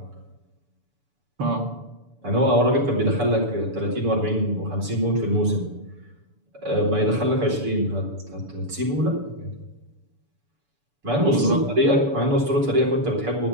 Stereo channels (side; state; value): left; late; 6.9 ms